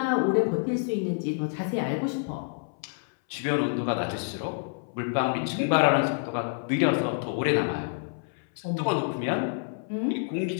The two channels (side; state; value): right; silent; 59 dB below the other